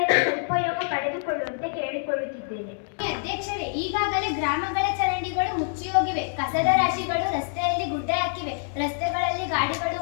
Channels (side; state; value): right; silent; digital silence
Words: ಉಪಯೋಗ ಪಡೆದುಕೊಳ್ಳುವಂತೆ ಕೇಳಿಕೊಳ್ಳುತ್ತಿದ್ದೇನೆ. ಅಧ್ಯಕ್ಷರೇ, ಈಗಾಗಲೇ ಗ್ರಾಮಗಳ ಚರಂಡಿಗಳು ಮುಚ್ಚಿ ಹೋಗಿವೆ. ಕಸದ ರಾಶಿಗಳು ರಸ್ತೆಯಲ್ಲಿ ಗುಡ್ಡೆ ಹಾಕಿವೆ. ರಸ್ತೆಗಳಲ್ಲಿ ಗಾಡಿಗಳು